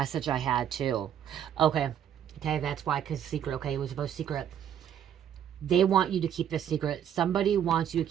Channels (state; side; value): quieter; left; 9.5 dB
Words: I had too. Okay, that's why, because secret. Okay, it was about secret. They want you to keep this secret. Somebody wants you to